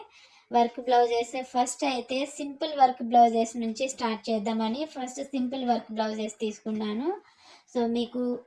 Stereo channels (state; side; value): identical; both; correlation 1.00